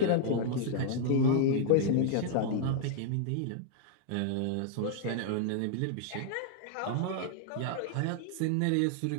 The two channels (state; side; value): different; both; correlation 0.00